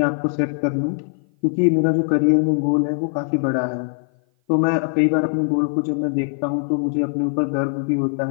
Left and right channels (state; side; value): silent; right; 56 dB below the other